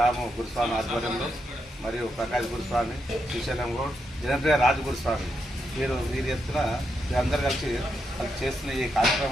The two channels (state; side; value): normal; both; correlation 0.82